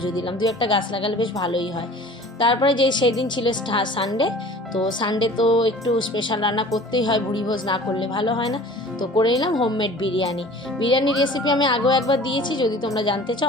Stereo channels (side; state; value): both; normal; correlation 0.45